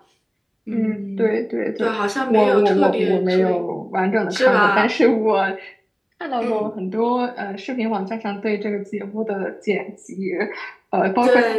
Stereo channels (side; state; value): both; identical; correlation 1.00